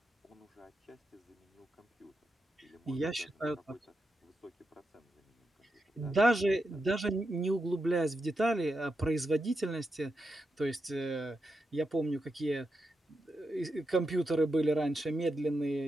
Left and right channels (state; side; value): normal; both; correlation 0.86